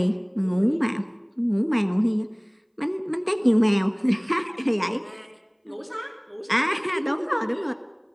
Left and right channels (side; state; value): both; identical; correlation 1.00